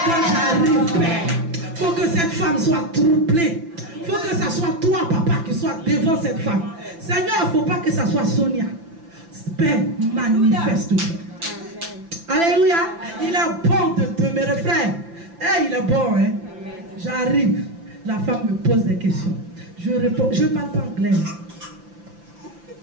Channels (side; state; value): left; late; 5.9 ms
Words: Quand j'arrive, Père, il faut que cette femme soit troublée. Il faut que ce soit toi, papa, qui soit devant cette femme. Seigneur, il ne faut pas que ce soit Sonia. Père, manifeste-toi. Alléluia. Il est bon de demeurer, frère. Hey, il est bon, hein. J'arrive. La femme me pose des questions. Je réponds. Je ne parle pas anglais.